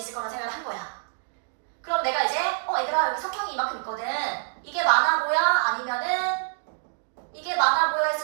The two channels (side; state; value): left; silent; digital silence